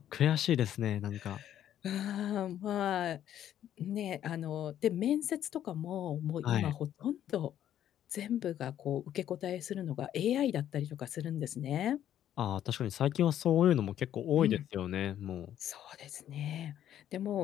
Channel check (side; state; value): right; quieter; 11.0 dB